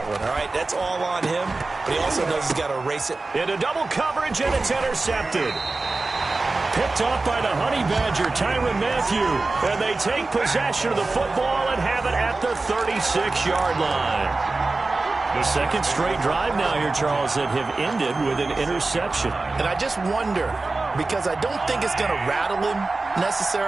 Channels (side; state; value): left; quieter; 3.4 dB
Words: one, all right? That's all on him, but he also knows he's got to erase it. Into double coverage, and it's intercepted. Picked off by the Honey Badger, Tyrann Mathieu. And they take possession of the football and have it at the 36-yard line. The second straight drive now here, Charles, that have ended with an interception. And I just wonder, because I don't think it's going to rattle him